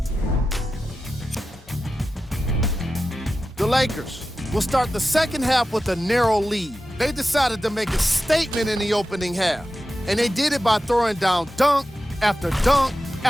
The Lakers will start the second half with a narrow lead. They decided to make a statement in the opening half, and they did it by throwing down dunk after dunk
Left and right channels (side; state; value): both; normal; correlation 0.93